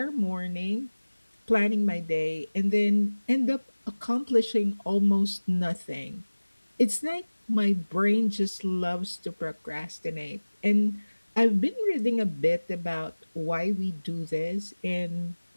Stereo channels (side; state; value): both; inverted; correlation -1.00